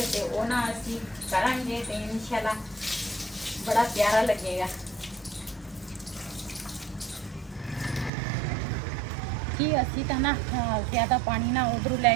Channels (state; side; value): drops out; left; at 8.1 s